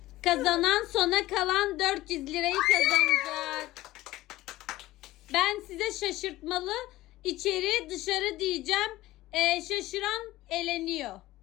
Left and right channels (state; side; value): quieter; right; 16.9 dB